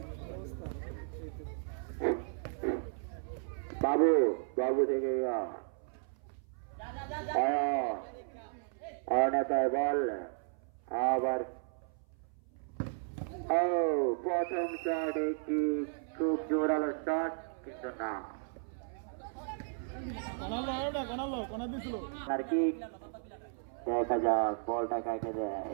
বাবু বাবু থেকে অনেতায় বল আবার প্রথম শট একটি খুব জোরালো শট কিন্তু না আর কি দেখা যাক বলটা কাকে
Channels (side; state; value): left; silent; 55 dB below the other